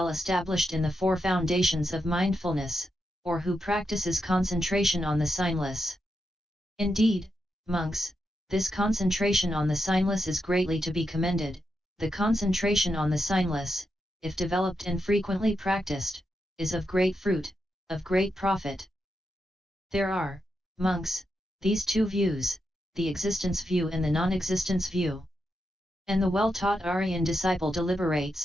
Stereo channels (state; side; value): normal; both; correlation 0.85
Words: established in the 4 foundations of mindfulness, or who practices concentration on the signless. Indeed, monks, this concentration on the signless is greatly to be commended. The concentration on the signless, if developed and frequently practiced, is of great fruit, of great profit. There are, monks, these 2 views, the existence view and the non-existence view. And the well-taught Aryan disciple